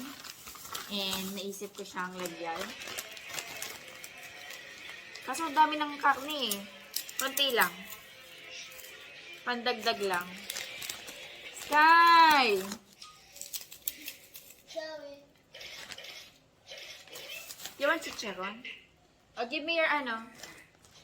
And naisip ko siyang lagyan. Kaso ang dami ng karne eh. Konti lang. Pandagdag lang. Sky! You want chicharon? Oh, give me your ano.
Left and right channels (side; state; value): both; identical; correlation 1.00